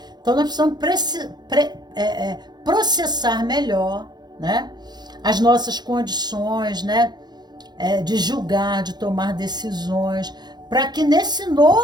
Então nós precisamos processar melhor, né? As nossas condições, né? De julgar, de tomar decisões, para que nesse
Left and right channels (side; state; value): left; late; 0.20 ms